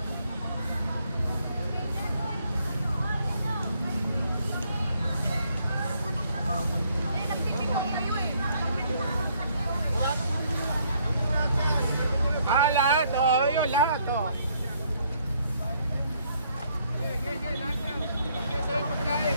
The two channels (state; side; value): inverted; both; correlation -0.68